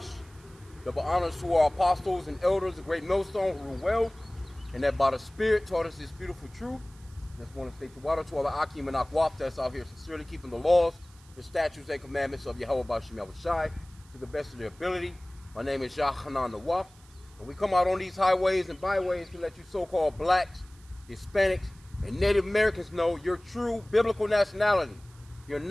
Double honors to our apostles and elders, the great millstone who rule well, and that by the Spirit taught us this beautiful truth. Just want to say to water to all the H.I.M and Akwaf that's out here sincerely keeping the laws, the statutes and commandments of Yahweh B'Shem Yahweh Shai to the best of their ability. My name is Yahanan Nawaf. And we come out on these highways and byways to let you so-called blacks, Hispanics, and Native Americans know your true biblical nationality. You're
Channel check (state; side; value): noise; right; hiss, 27 dB below the sound